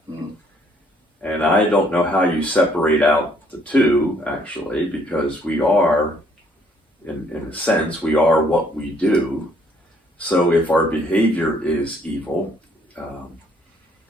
And I don't know how you separate out the two, actually, because we are, in a sense, we are what we do. So if our behavior is evil,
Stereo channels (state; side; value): normal; both; correlation 0.65